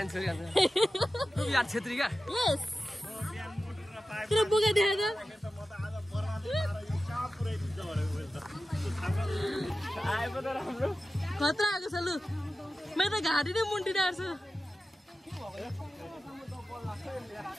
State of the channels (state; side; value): normal; both; correlation 0.94